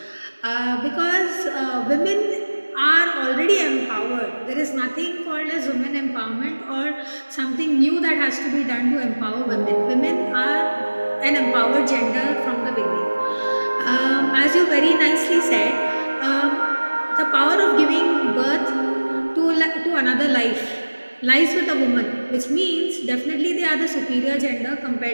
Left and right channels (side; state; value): both; inverted; correlation -1.00